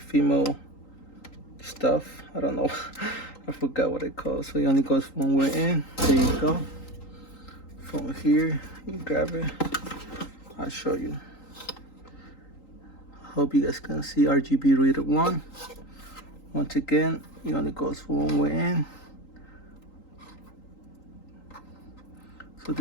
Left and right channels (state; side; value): late; right; 3.8 ms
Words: stuff. I don't know. I forgot what it calls. So it only goes one way in. There you go. From here, you grab it. I'll show you. Hope you guys can see RGB reader one. Once again, it only goes one way in. So